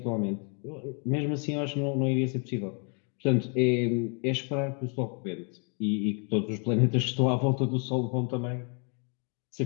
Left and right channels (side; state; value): right; quieter; 38.3 dB